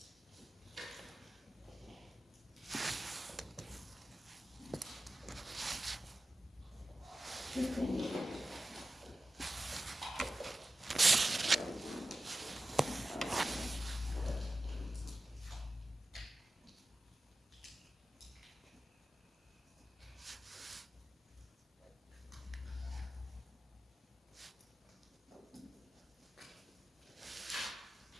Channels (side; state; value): both; normal; correlation 0.94